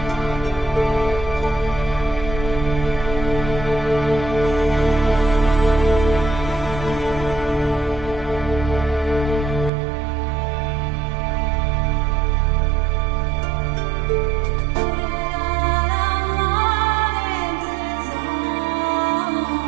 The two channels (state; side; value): drops out; left; at 9.7 s